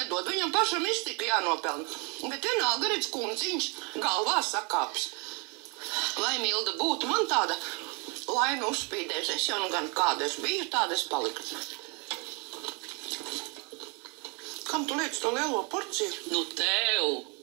Viņam pašam iztika jānopelna. Bet vienalga redz kundziņš galvā sakāps. Lai Milda būtu man tāda laina uzspīdēs. Es jau nu gan kāda es biju, tāda es paliku. Kam tu liec to lielo porciju? Nu, tev,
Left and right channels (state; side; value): quieter; left; 32.4 dB